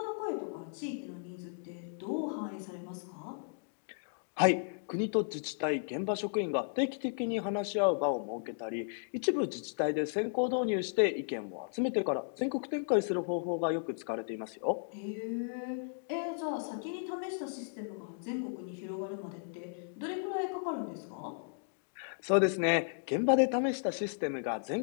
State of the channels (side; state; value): right; silent; digital silence